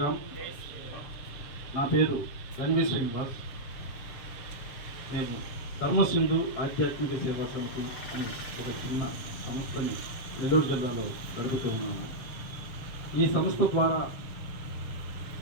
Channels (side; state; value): right; late; 7.1 ms